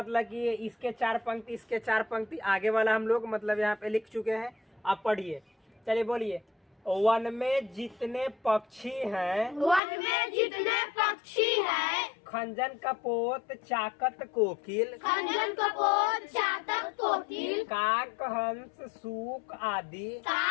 कि इसके चार पंक्ति, इसके चार पंक्ति आगे वाला हम लोग मतलब यहाँ पे लिख चुके हैं। आप पढ़िए, चलिए बोलिए। वन में जितने पक्षी हैं खंजन कपोत चाकत कोकिल, काक हंस सूक आदि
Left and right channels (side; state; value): right; drops out; at 9.8 s